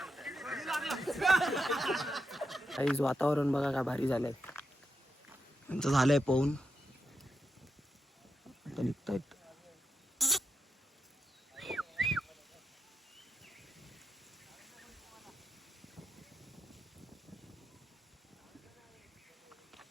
काहीच वातावरण बघा काय भारी झालंय. त्यांचं झालंय पोहून आता निघतायत.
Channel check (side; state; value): both; normal; correlation 0.84